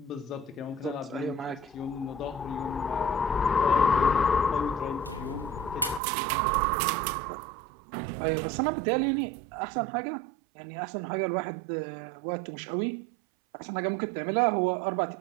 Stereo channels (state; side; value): drops out; left; at 6.0 s